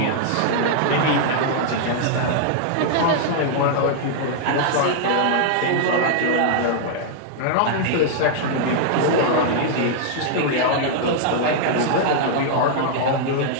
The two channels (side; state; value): both; different; correlation -0.01